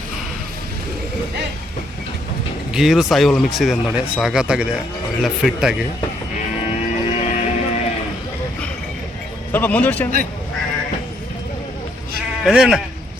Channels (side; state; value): both; normal; correlation 0.71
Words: ಗೀರು ಸಾಯಿವಲ ಮಿಕ್ಸ್ ಇದೆ ನೋಡಿ, ಸಾಗತ್ತಾಗಿದೆ, ಒಳ್ಳೆ ಫಿಟ್ ಆಗಿ. ಸ್ವಲ್ಪ ಮುಂದುವರ್ಸಿ ಅಣ್ಣ,